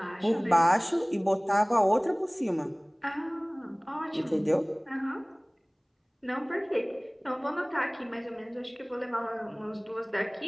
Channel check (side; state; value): both; identical; correlation 1.00